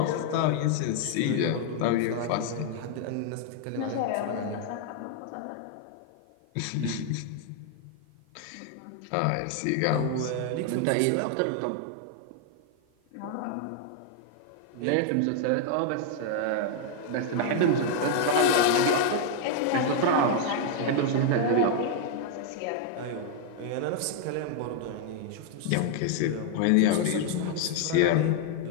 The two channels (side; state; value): both; different; correlation 0.00